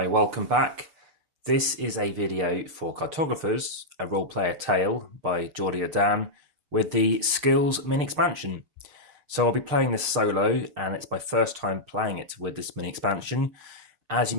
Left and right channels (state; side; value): late; left; 6.6 ms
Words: welcome back. This is a video for Cartographers, a role-player tale by Geordie Dan with the Skills mini expansion. So I'll be playing this solo, and it's my first time playing it with this mini expansion. As you